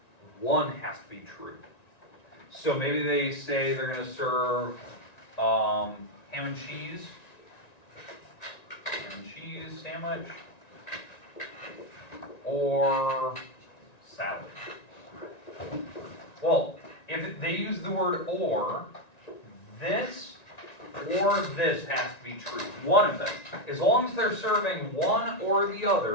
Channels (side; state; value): right; late; 1.9 ms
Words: one has to be true. So maybe they say they're going to serve ham and cheese sandwich, or salad. Well, if they use the word or this has to be true. One of them. As long as they're serving one or the